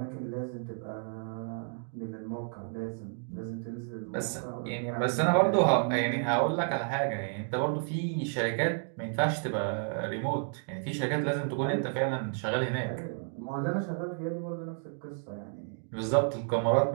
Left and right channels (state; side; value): silent; left; 57 dB below the other